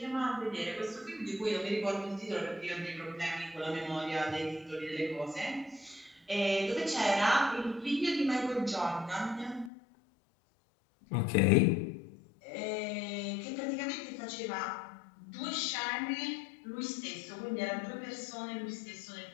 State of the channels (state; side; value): drops out; right; at 9.7 s